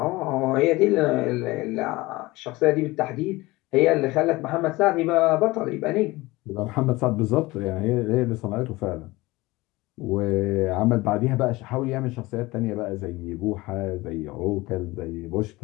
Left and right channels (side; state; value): right; quieter; 20.8 dB